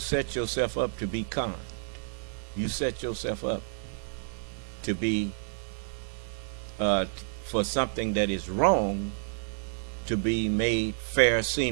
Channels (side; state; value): left; silent; digital silence